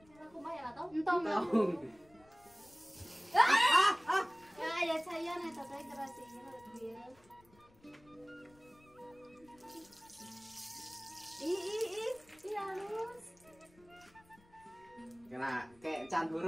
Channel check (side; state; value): left; noise; rumble, 28 dB below the sound